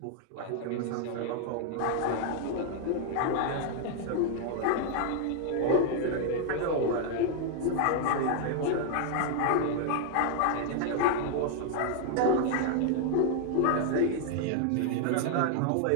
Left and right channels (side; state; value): both; different; correlation 0.00